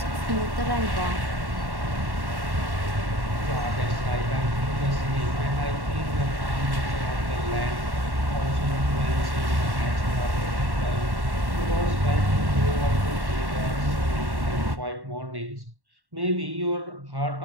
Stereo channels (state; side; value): late; left; 1.1 ms